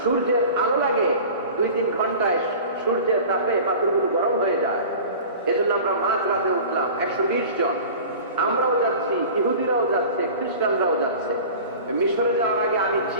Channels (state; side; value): inverted; both; correlation -0.39